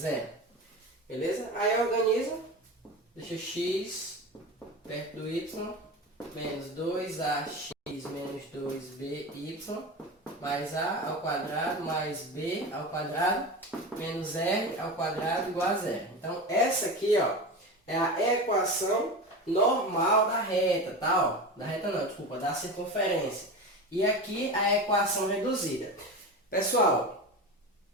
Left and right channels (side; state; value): both; normal; correlation 0.26